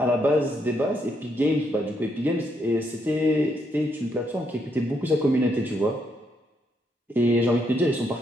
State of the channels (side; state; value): both; normal; correlation 0.76